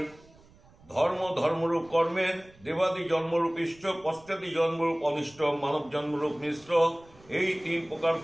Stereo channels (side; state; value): right; noise; rumble, 26 dB below the sound